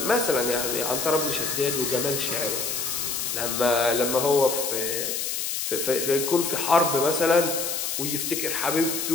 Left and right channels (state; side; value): noise; left; hiss, 2 dB below the sound